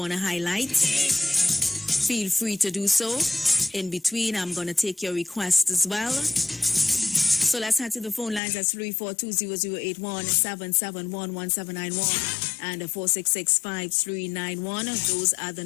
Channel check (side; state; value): right; drops out; at 8.4 s